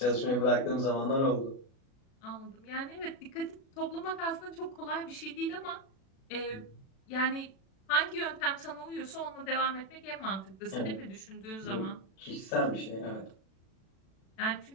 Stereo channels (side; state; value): right; late; 36 ms